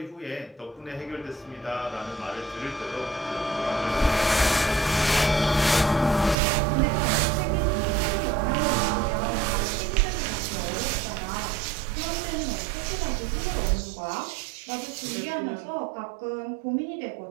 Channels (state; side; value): drops out; left; at 6.4 s